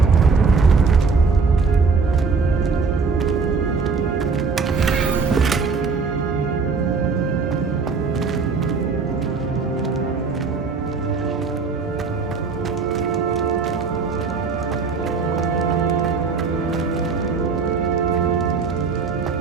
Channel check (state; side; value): quieter; left; 4.8 dB